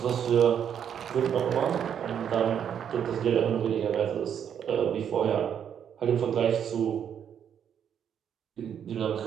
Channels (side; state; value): left; quieter; 8.6 dB